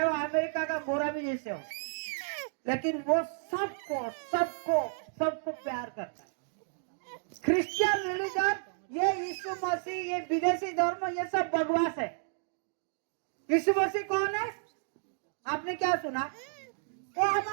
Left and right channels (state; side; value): silent; left; digital silence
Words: वो अमेरिका का गोरा भी जैसे हो, लेकिन वो सबको प्यार करता है। क्रिश्चियन रिलीजन, ये यीशु मसीह, ये विदेशी धर्म, ये सब बकवास है। यीशु मसीह कौन है? आपने क्या सुना? वो